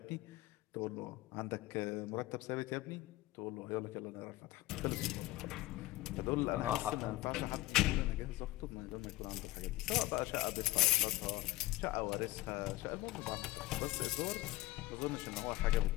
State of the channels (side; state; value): right; quieter; 18.0 dB